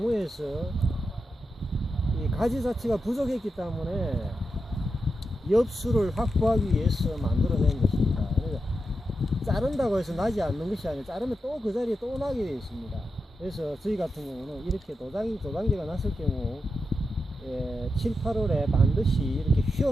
이 가지 자체가 부족했기 때문에 엽수를 확보하기 위해서 만들어낸 것입니다. 그래서 자른다고 해서 나지 않는 것이 아니라 자르면 또 그 자리에 또 나게 되어 있습니다. 그래서 저희 같은 경우는 이렇게 도장지가 났을 경우 7, 8월에 반드시 이렇게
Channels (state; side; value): normal; both; correlation 0.88